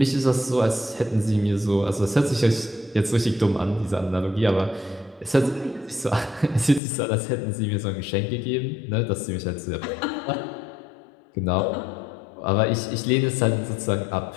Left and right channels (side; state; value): right; drops out; at 6.8 s